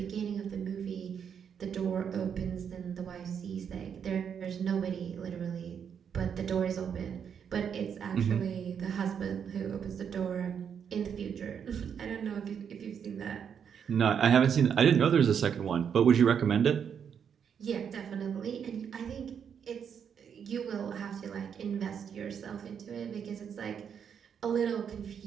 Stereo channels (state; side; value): quieter; left; 7.6 dB